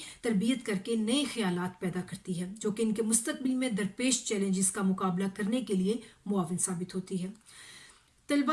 تربیت کر کے نئے خیالات پیدا کرتی ہے جو کہ ان کے مستقبل میں درپیش چیلنجز کا مقابلہ کرنے کے لیے معاون ثابت ہوتی ہے.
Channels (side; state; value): both; identical; correlation 1.00